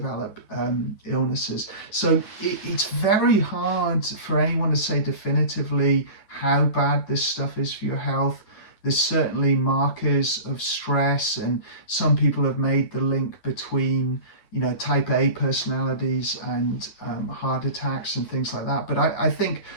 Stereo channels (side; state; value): right; late; 9.9 ms